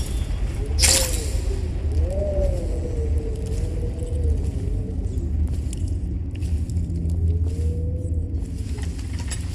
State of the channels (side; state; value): both; identical; correlation 1.00